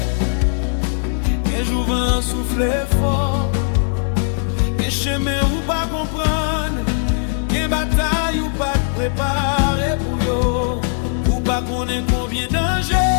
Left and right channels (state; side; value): silent; right; 67 dB below the other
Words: quel jour vent souffler fort, quel chemin ou pas comprendre, quelle bataille ou pas préparer pour yo. Pas connaît combien de